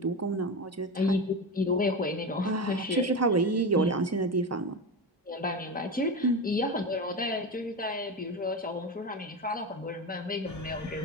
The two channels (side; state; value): both; normal; correlation 0.21